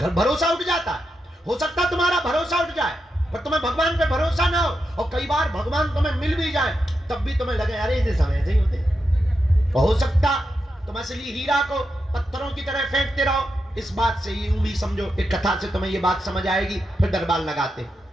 भरोसा उठ जाता है। हो सकता है तुम्हारा भरोसा उठ जाए, पर तुम्हें भगवान पे भरोसा ना हो, और कई बार भगवान तुम्हें मिल भी जाए तब भी तुम्हें लगे अरे इसे समय से ही होते। हो सकता तुम असली हीरा को पत्थरों की तरह फेंकते रहो। इस बात से यूं भी समझो, एक कथा से तुम्हें ये बात समझ आएगी, फिर दरबार लगाते।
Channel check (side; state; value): both; normal; correlation 0.86